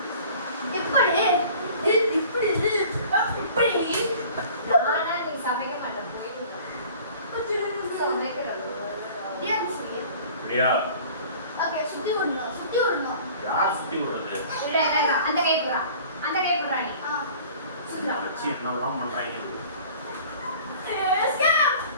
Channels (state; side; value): inverted; both; correlation -0.47